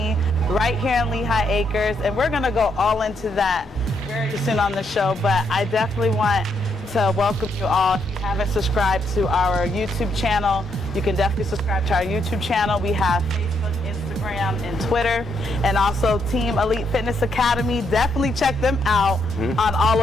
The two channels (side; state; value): both; normal; correlation 0.76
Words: right here in Lehigh Acres, and we're going to go all into that very soon on the show, but I definitely want to welcome you all. If you haven't subscribed to our YouTube channel, you can definitely subscribe to our YouTube channel. We have Facebook, Instagram, and Twitter, and also Team Elite Fitness Academy. Definitely check them out on all